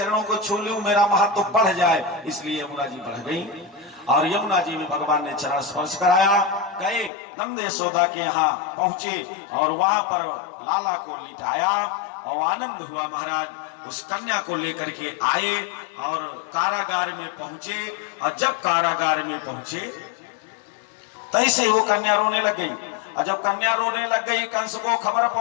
को छू लूं, मेरा महत्व बढ़ जाए, इसलिए यमुना जी बढ़ गई। और यमुना जी में भगवान ने चरण स्पर्श कराया। गए नंद यशोदा के यहाँ पहुंचे और वहां पर लाला को लिटाया और आनंद हुआ। महाराज उस कन्या को लेकर के आए और कारागार में पहुंचे और जब कारागार में पहुंचे तैसे वो कन्या रोने लग गई। और जब कन्या रोने लग गई, कंस को खबर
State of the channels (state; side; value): drops out; right; at 7.1 s